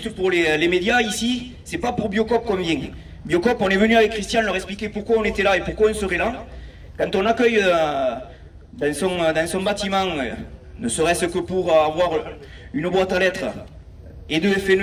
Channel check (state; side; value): identical; both; correlation 1.00